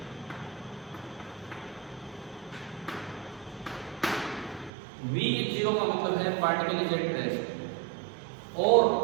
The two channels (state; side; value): drops out; left; at 4.7 s